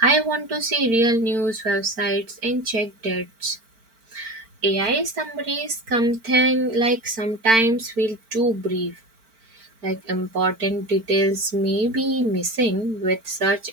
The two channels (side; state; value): left; late; 4.4 ms